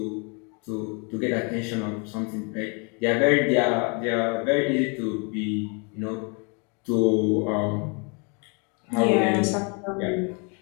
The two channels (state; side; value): quieter; right; 34.3 dB